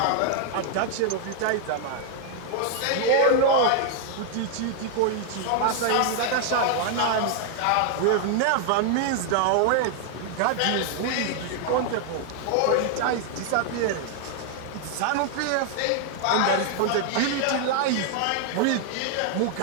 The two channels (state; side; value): different; both; correlation 0.00